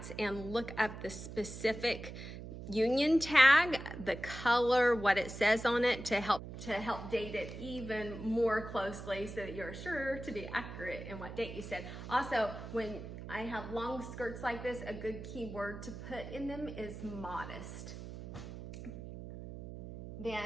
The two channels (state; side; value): noise; right; hum, 10 dB below the sound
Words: and look up the specific union tag, the color, what it says on it, to help date it even more closely so that you're sure to be accurate in what date you said. Also, when I have long skirts like this, a good keyword to put in them is modest.